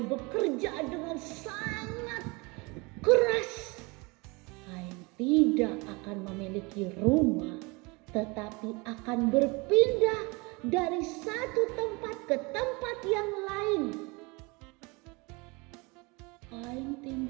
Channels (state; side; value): quieter; left; 26.9 dB